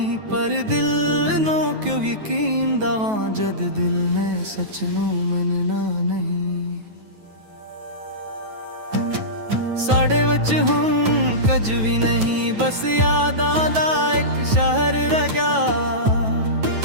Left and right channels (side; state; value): left; late; 9.3 ms